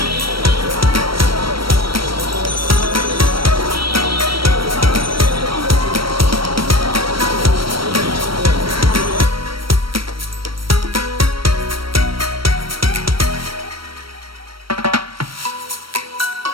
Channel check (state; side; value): late; left; 0.75 ms